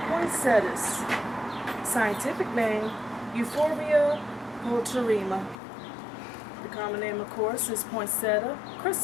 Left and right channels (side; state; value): right; drops out; at 5.6 s